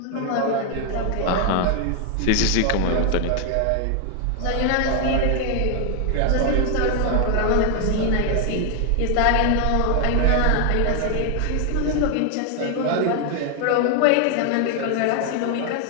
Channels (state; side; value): different; both; correlation 0.00